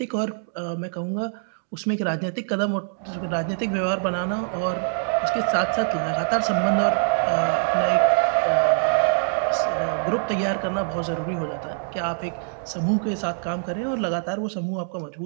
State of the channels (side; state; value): left; silent; digital silence